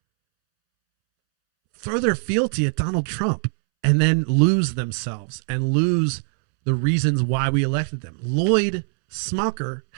throw their fealty at Donald Trump and then lose themselves and lose the reasons why we elected them. Lloyd Smucker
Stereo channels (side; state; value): left; silent; 64 dB below the other